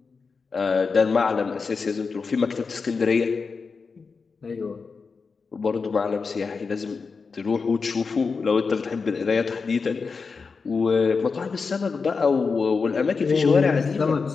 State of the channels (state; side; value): quieter; right; 4.9 dB